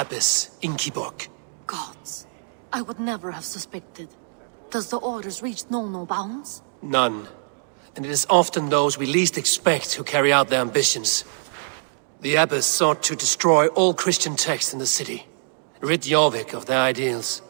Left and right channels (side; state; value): left; silent; digital silence